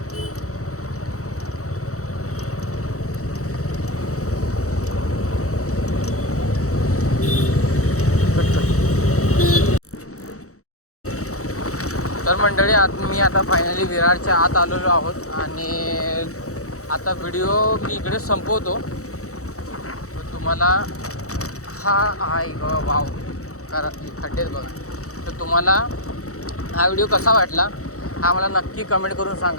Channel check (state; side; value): late; right; 0.65 ms